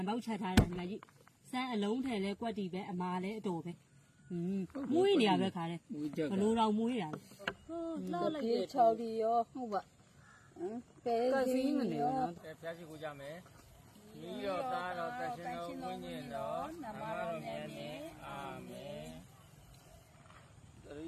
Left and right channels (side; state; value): both; identical; correlation 1.00